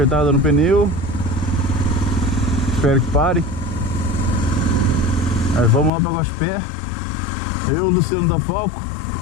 no pneu, espero que pare. Aí vamos lá para Guaxupé. Eu, Luciano da Falco,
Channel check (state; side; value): drops out; right; at 5.9 s